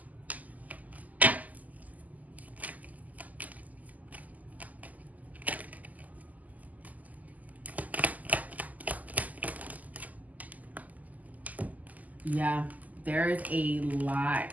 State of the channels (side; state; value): left; late; 0.079 ms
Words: Yeah, there's a lot